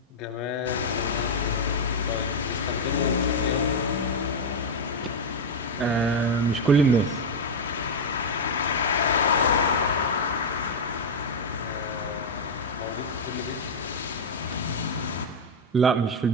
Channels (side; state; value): both; normal; correlation 0.01